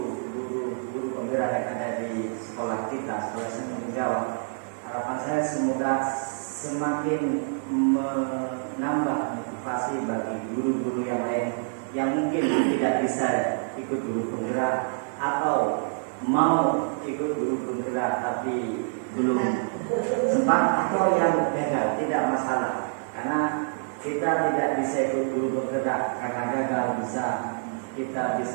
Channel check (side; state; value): left; silent; 60 dB below the other